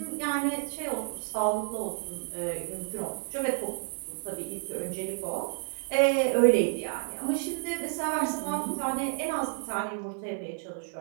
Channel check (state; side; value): silent; left; digital silence